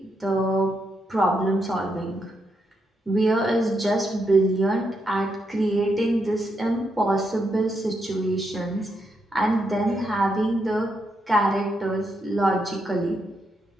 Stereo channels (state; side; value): normal; both; correlation 0.81